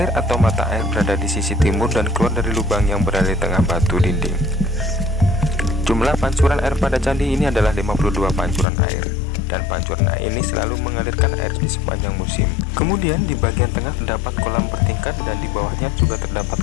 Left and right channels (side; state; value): right; drops out; at 8.7 s